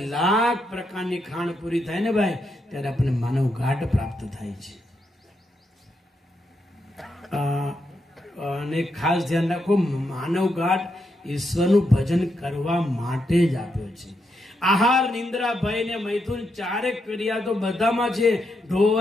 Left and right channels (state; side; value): normal; both; correlation 0.82